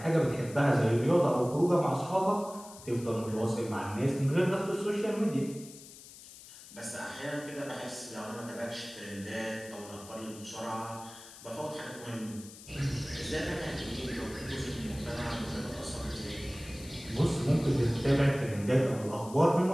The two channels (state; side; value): noise; left; hiss, 17 dB below the sound